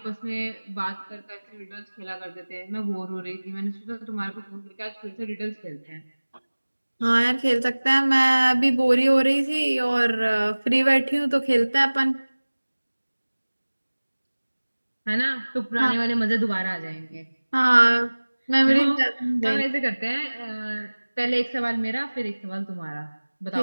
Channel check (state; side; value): inverted; both; correlation -1.00